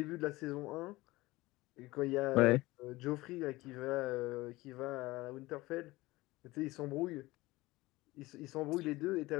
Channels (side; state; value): right; quieter; 19.9 dB